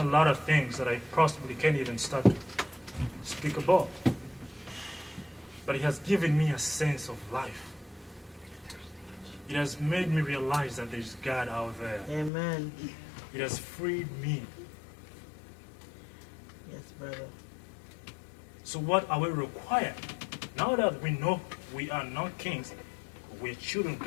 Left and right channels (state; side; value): drops out; right; at 12.3 s